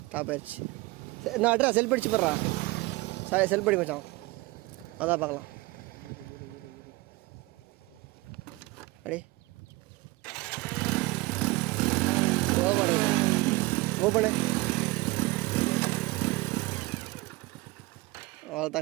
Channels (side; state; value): left; quieter; 22.1 dB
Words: டாப் ஆயிடுச்சு. சரி நான் அட்ரா செல்ஃப் அடிச்சு போடுறா. சாரி செல்ஃப் அடி மச்சான். அதான் பார்க்கலாம். அடி ஓப்பனு அவ்வளோ